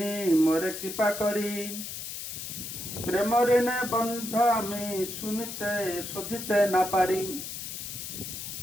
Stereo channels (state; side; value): noise; left; hiss, 7 dB below the sound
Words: মোরে কৃপা করি, প্রেম ঋণে বন্ধ আমি শুনিতে শোধিতে না পারি।